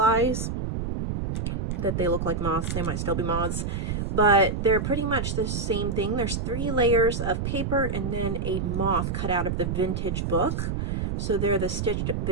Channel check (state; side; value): noise; right; rumble, 2 dB below the sound